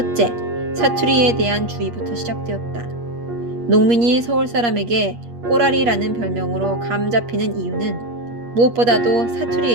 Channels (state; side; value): late; left; 8.4 ms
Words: 사투리에 대한 주의부터 시작되었다. 농민이 서울 사람에게 꼬라리라는 별명으로 감 잡히는 이유는 무엇보다도